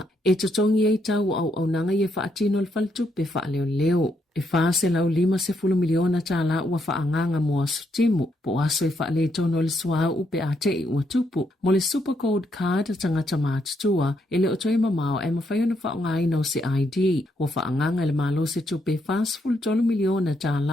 E tutongi e tau au nanga i e whaatino le whale tupe wha leo leo. E whaase lau 50 miliona Tala ua whaanganga mua sutimu, po aso e whaale tono le sua upe a te ua tupu, mo le super code card tangata mātutua, e le otoi mamao e mawhaiona whaongai no se ID, o whaanganga le malo se tupe fast full $1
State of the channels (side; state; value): both; normal; correlation 0.76